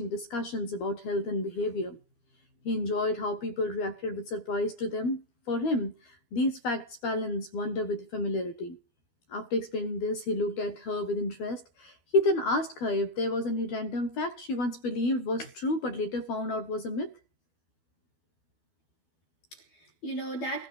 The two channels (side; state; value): right; late; 12 ms